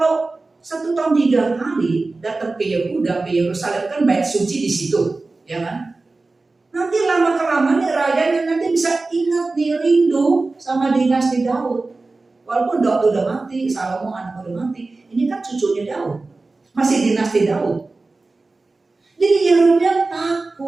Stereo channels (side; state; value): left; quieter; 3.5 dB